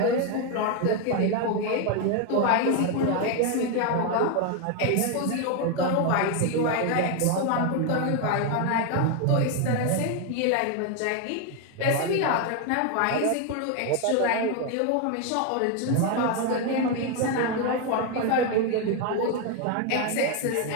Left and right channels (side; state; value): both; different; correlation 0.01